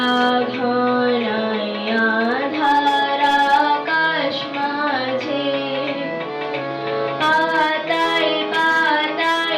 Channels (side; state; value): both; identical; correlation 1.00